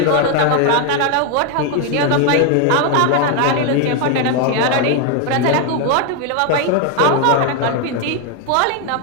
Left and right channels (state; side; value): different; both; correlation 0.01